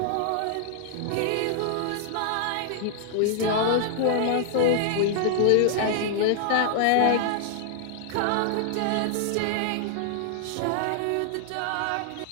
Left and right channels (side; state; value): both; different; correlation -0.01